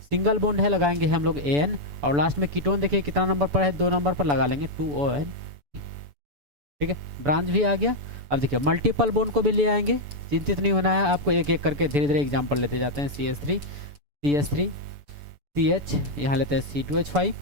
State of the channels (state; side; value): late; left; 6.9 ms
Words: सिंगल बॉन्ड है, लगाएंगे हम लोग AN, और लास्ट में कीटोन देखिए कितना नंबर पर है, 2 नंबर पर, लगा लेंगे 2ON। ठीक है, ब्रांच भी आ गया। अब देखिए मल्टीपल बॉन्ड को भी ले आएंगे, चिंतित नहीं होना है आपको, एक एक करके धीरे धीरे एग्जाम्पल लेते जाते हैं। CH3 CH3 CH, यहाँ लेते हैं C2H5।